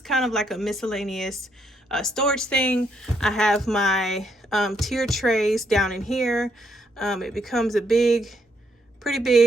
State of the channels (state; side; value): normal; both; correlation 0.74